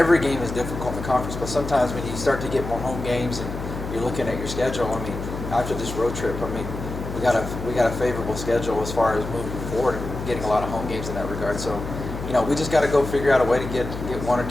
game is difficult in the conference. But sometimes when you start to get more home games and you're looking at your schedule, I mean, after this road trip, I mean, we got a favorable schedule as far as moving forward and getting a lot of home games in that regard. So, we just got to go figure out a way to get one or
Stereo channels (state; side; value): noise; left; hum, 7 dB below the sound